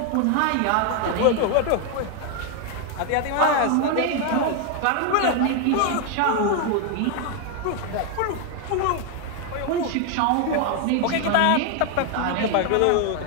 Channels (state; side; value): different; both; correlation 0.01